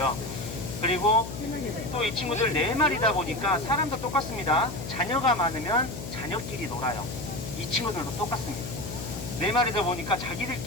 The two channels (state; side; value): noise; left; hum, 8 dB below the sound